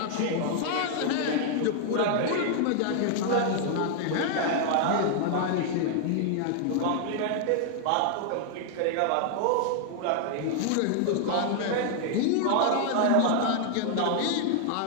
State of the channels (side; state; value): both; different; correlation 0.00